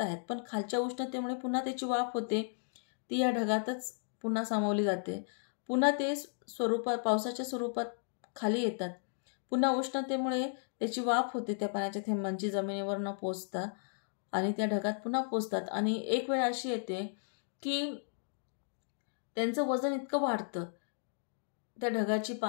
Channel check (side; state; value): right; silent; digital silence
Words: आहेत, पण खालच्या उष्णतेमुळे पुन्हा त्याची वाफ होते, ती या ढगातच पुन्हा सामावली जाते. पुन्हा ते पावसाच्या स्वरूपात खाली येतात. पुन्हा उष्णतेमुळे त्याची वाफ होते त्या पाण्याच्या थेंबांची जमिनीवर न पोचता आणि त्या ढगात पुन्हा पोचतात. आणि एक वेळ अशी येते की त्यांचं वजन इतकं वाढतं, त्या ढगाची